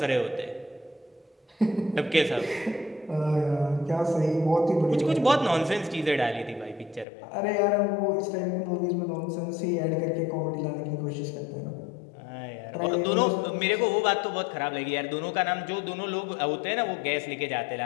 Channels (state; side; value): drops out; right; at 7.1 s